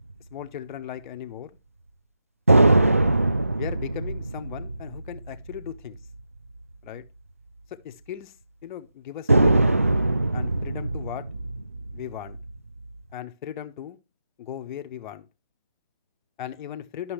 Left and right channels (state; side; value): inverted; both; correlation -0.86